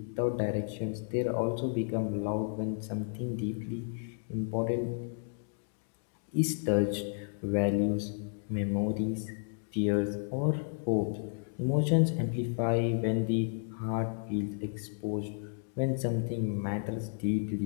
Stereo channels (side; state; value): right; silent; digital silence